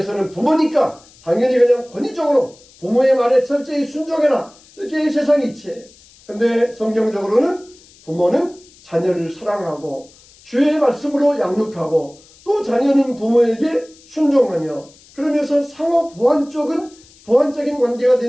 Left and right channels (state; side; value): noise; left; hiss, 26 dB below the sound